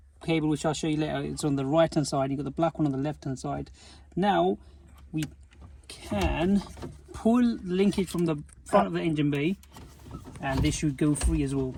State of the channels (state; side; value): identical; both; correlation 1.00